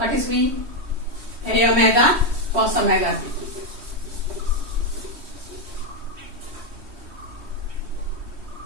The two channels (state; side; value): late; left; 3.2 ms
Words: is v? A omega cos omega t.